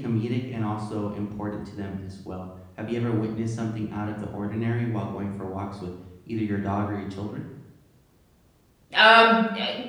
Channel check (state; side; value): identical; both; correlation 1.00